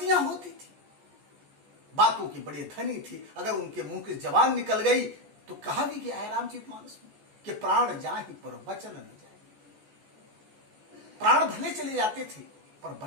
होती थी, बातों के बड़े धनी थे। अगर उनके मुंह की जबान निकल गई तो कहा भी गया है रामचरितमानस में कि प्राण जाहि पर वचन न जाए। प्राण भले चले जाते थे पर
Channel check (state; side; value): late; left; 14 ms